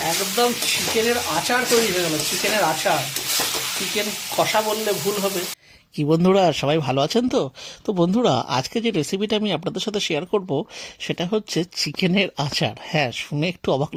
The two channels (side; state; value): both; identical; correlation 1.00